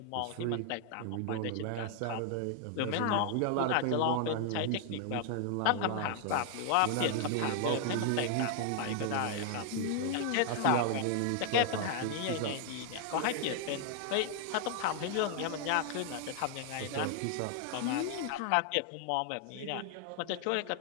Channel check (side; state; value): both; different; correlation 0.00